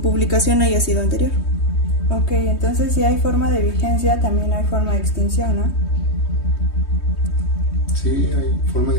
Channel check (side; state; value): right; late; 3.2 ms